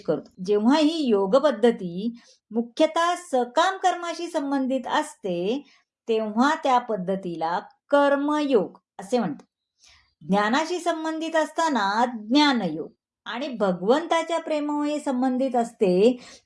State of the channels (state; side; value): identical; both; correlation 1.00